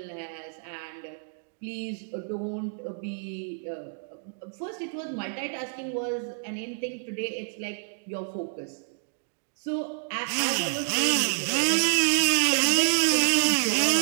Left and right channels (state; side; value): silent; left; digital silence